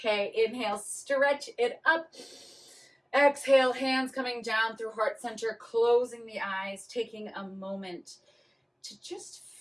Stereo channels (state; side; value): identical; both; correlation 1.00